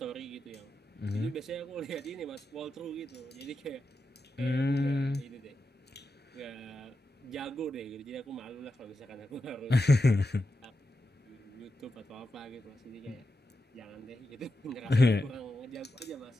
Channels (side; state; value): both; normal; correlation 0.88